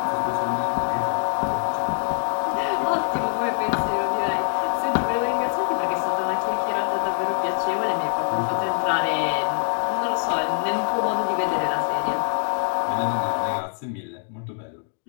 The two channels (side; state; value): right; silent; 56 dB below the other